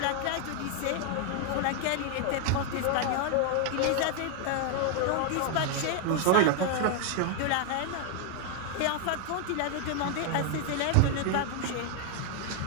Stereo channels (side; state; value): both; different; correlation 0.00